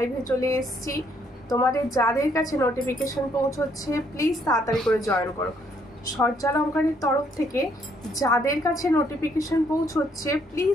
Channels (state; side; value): normal; both; correlation 0.69